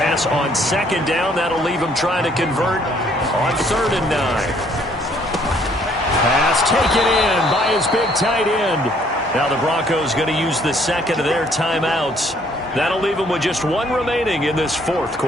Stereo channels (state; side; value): normal; both; correlation 0.64